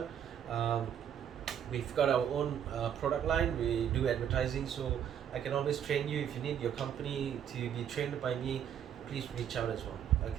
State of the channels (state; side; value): quieter; left; 9.1 dB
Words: We've got our own product line. We do advertising, so I can always train you. If you need your company to be trained by me, please reach out as well.